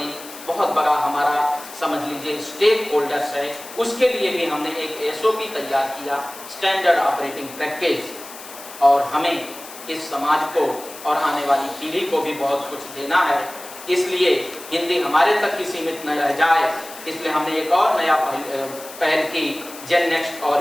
बड़ा हमारा समझ लीजिए स्टेक होल्डर्स है, उसके लिए भी हमने एक एसओपी तैयार किया, स्टैंडर्ड ऑपरेटिंग प्रैक्टिस, और हमें इस समाज को और आने वाली पीढ़ी को भी बहुत कुछ देना है, इसलिए हिंदी हमारे तक ही सीमित न रह जाए, इसलिए हमने एक और नया पहल की, जेन नेक्स्ट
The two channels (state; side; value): noise; left; hiss, 15 dB below the sound